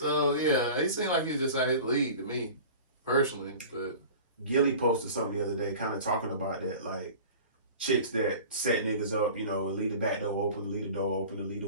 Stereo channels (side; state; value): both; inverted; correlation -0.39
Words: yeah, he seemed like he was just out his league to me, personally. But Gilly posted something the other day kind of talking about that, like, chicks that set niggas up, you know, and leave the back door open, leave the door open, and leave